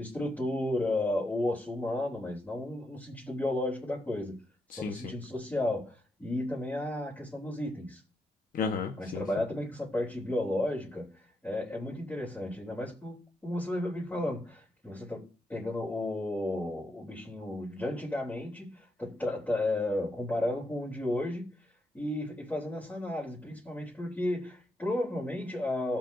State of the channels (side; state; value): both; normal; correlation 0.82